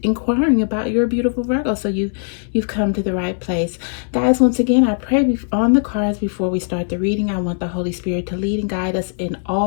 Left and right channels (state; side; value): silent; right; digital silence